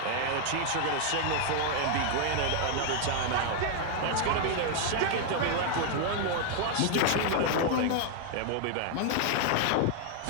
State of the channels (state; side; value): different; both; correlation 0.00